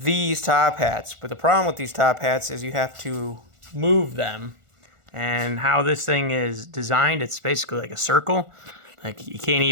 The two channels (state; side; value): late; left; 1.4 ms